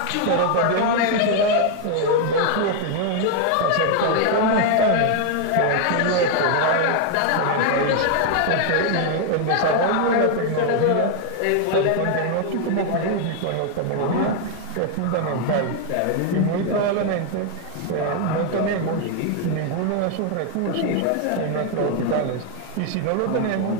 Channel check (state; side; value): different; both; correlation 0.00